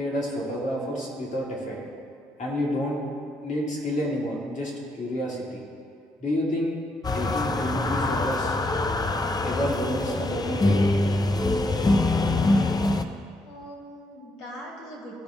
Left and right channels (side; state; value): both; normal; correlation 0.77